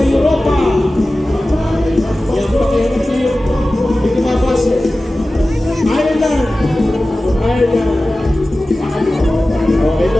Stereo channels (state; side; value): normal; both; correlation 0.96